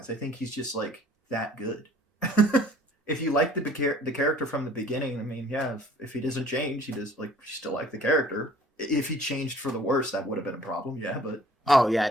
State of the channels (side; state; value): both; normal; correlation 0.54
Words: I think he's just like that good. If you like the character from the beginning, I mean, yeah, if he doesn't change, he does like you still like the character. If he changed for the worse, that would have been a problem. Yeah, but oh yeah,